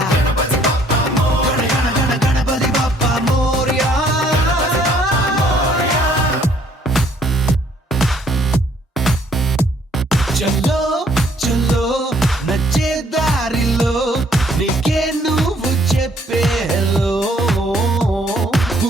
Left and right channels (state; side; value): normal; both; correlation 0.63